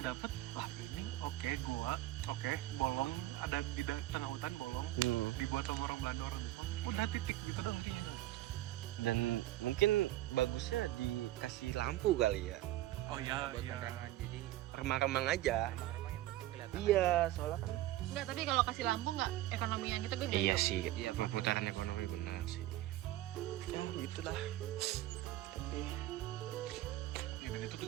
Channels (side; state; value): left; quieter; 15.4 dB